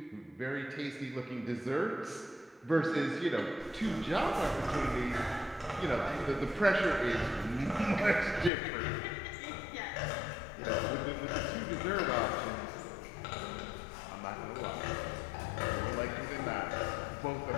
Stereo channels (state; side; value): drops out; right; at 8.5 s